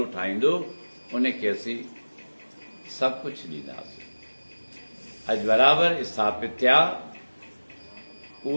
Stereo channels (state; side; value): inverted; both; correlation -1.00